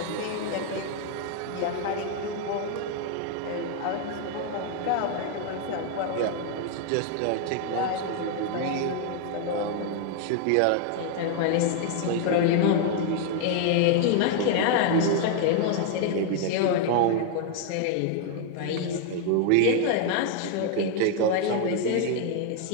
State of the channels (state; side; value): different; both; correlation 0.00